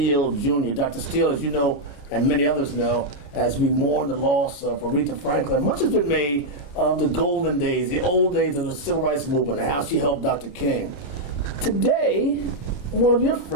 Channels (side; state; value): right; late; 29 ms